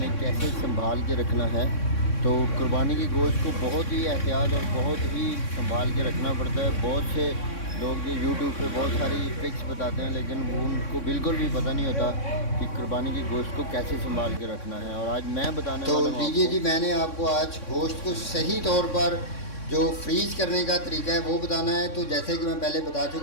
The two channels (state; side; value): late; right; 3.6 ms